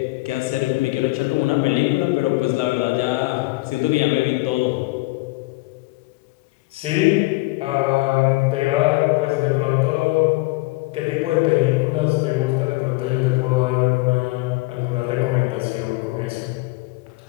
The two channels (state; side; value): quieter; right; 22.9 dB